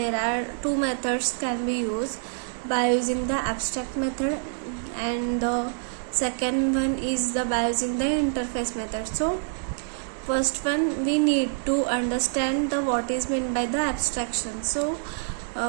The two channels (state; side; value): silent; left; digital silence